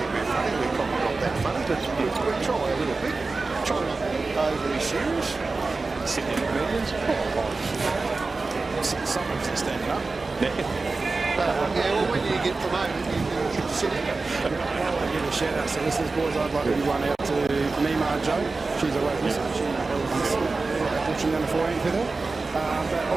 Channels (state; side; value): quieter; left; 3.8 dB